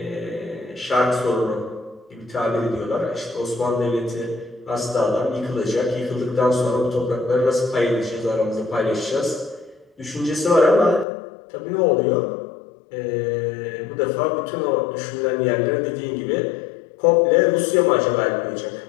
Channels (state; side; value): drops out; right; at 11.1 s